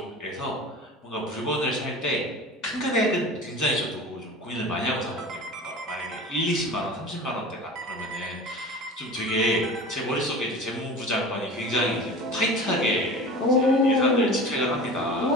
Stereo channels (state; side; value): normal; both; correlation 0.36